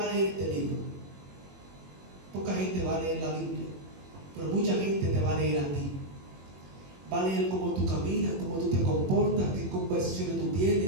a leer este libro, poca gente va a leer la Biblia, pero mucha gente te va a leer a ti. Va a leer cómo tú caminas, cómo tú te comportas, qué conversaciones tú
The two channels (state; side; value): late; left; 21 ms